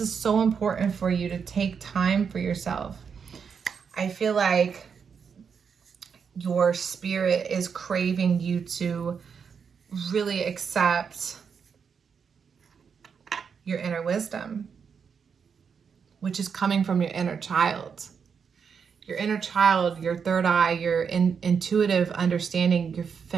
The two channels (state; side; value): quieter; left; 6.5 dB